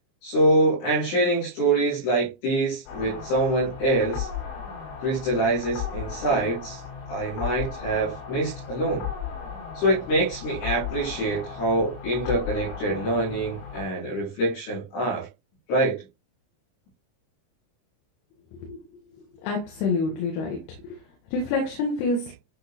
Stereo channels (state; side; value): late; right; 25 ms